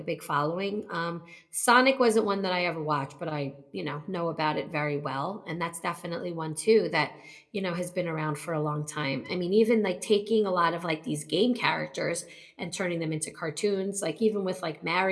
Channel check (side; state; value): both; identical; correlation 1.00